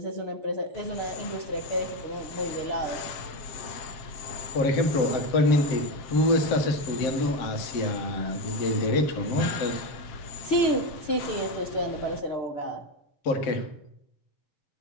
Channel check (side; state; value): right; late; 7.6 ms